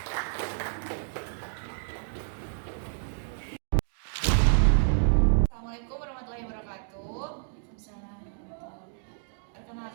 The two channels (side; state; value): left; silent; digital silence